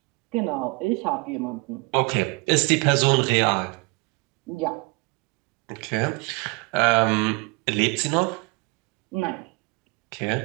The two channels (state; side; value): quieter; left; 27.1 dB